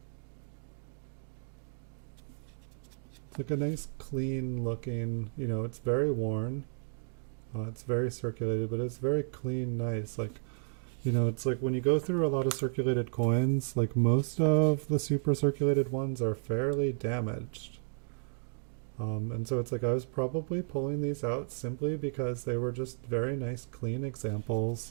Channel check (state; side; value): silent; left; digital silence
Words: It's like a nice clean looking, it's very worn. It's very circulated, but it's very clean, nice. Like, it's like when you go through a lot of circulated coins, like most of the super circulated ones are fairly damaged. And so it's like I was probably pulling these out simply because they were just very nice, clean